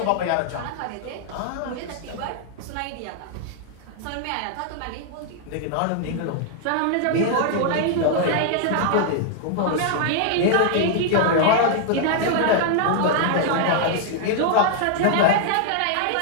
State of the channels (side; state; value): both; different; correlation 0.00